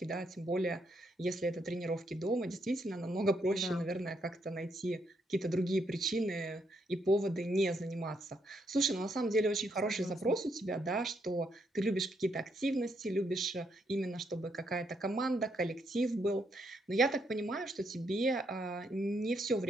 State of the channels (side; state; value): both; normal; correlation 0.76